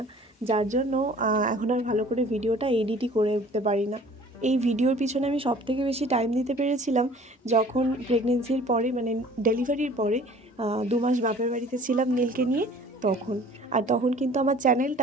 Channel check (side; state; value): both; normal; correlation 0.50